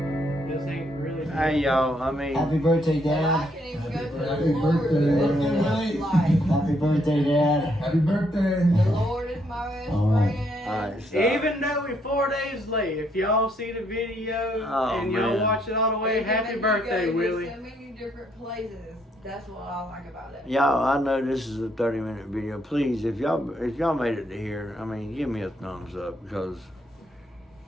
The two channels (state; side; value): normal; both; correlation 0.72